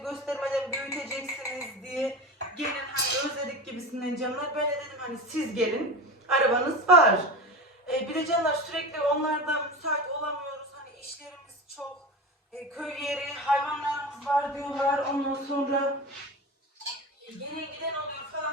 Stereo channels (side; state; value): both; normal; correlation 0.27